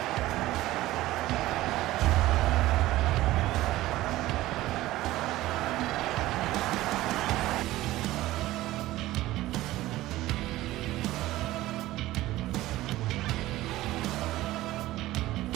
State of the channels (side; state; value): left; quieter; 16.5 dB